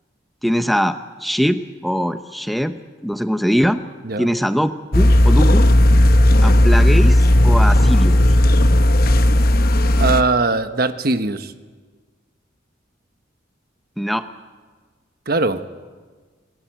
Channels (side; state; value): both; normal; correlation 0.88